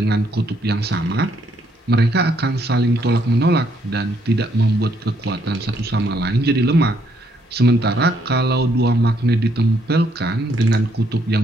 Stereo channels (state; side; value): normal; both; correlation 0.71